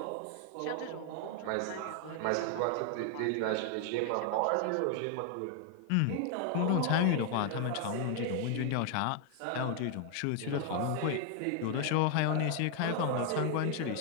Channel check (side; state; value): both; different; correlation 0.00